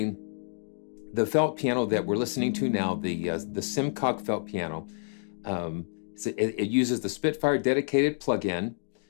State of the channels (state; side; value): silent; right; digital silence